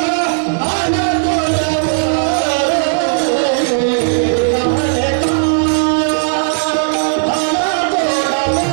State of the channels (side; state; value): left; silent; digital silence